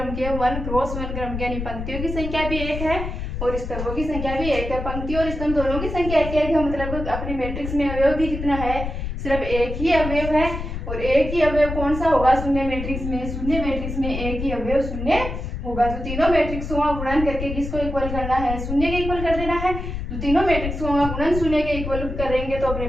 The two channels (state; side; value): noise; left; rumble, 5 dB below the sound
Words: की है, 1 क्रॉस 1 क्रम की, यानी पंक्तियों की संख्या भी एक है और स्तंभों की संख्या भी एक है। पंक्ति और स्तंभ दोनों की संख्या एक है, मतलब अपने मैट्रिक्स में अवयव भी कितना है, सिर्फ एक ही अवयव है। और एक ही अवयव कौन सा होगा शून्य मैट्रिक्स में, शून्य मैट्रिक्स में एक ही अवयव शून्य होगा। तो तीनों मैट्रिक्सों का गुणन करके किसको इक्वल करना है, शून्य के इक्वल कर देना है। तो तीनों मैट्रिक्सों का गुणन शून्य के इक्वल करेंगे तो अपने